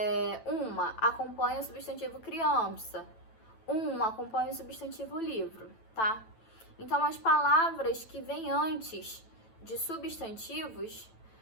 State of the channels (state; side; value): late; right; 9.0 ms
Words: Uma acompanha o substantivo criança. Acompanha o substantivo livro, tá? Então, as palavras que vêm antes de substantivos,